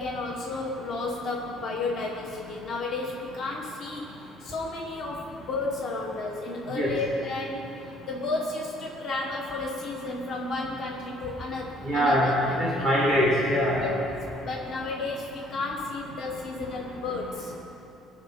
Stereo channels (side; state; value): both; normal; correlation 0.58